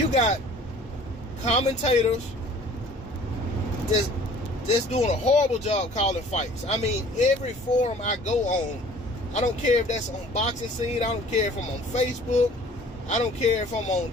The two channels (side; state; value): both; normal; correlation 0.50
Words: got commentators just doing a horrible job calling fights. I mean, every forum I go on, I don't care if that's on Boxing Scene, I don't care if I'm on Facebook, I don't care if I'm